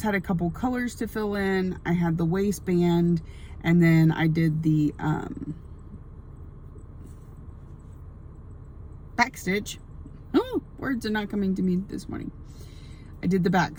had a couple colors to fill in. I had the waistband and then I did the back stitch. Oh, words are not coming to me this morning. I did the back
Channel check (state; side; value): identical; both; correlation 1.00